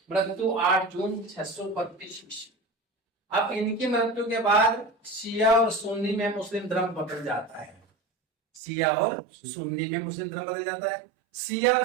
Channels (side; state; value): left; drops out; at 8.6 s